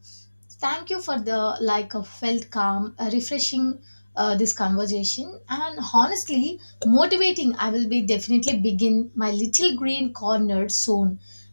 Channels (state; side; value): inverted; both; correlation -1.00